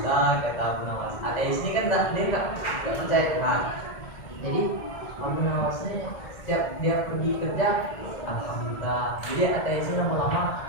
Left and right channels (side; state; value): right; late; 1.8 ms